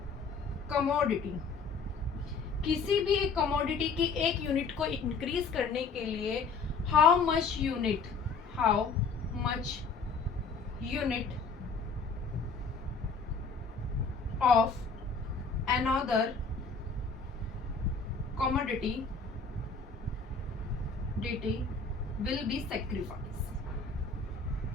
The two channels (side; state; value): right; quieter; 4.6 dB